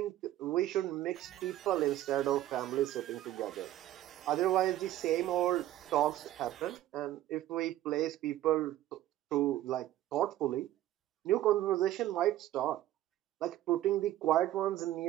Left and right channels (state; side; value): quieter; left; 13.9 dB